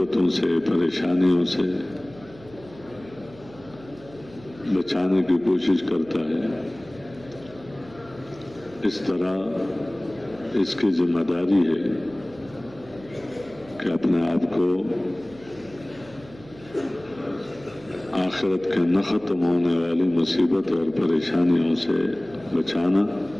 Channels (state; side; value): noise; right; hum, 21 dB below the sound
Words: سے، پریشانیوں سے بچانے کی کوشش کرتا ہے، اس طرح اس کی ذمہ داری ہے کہ اپنے آپ کو آخرت کے نہ ختم ہونے والی مصیبت اور پریشانیوں سے بچانا